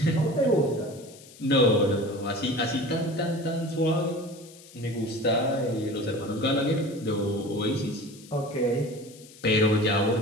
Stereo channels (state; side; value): noise; left; hiss, 21 dB below the sound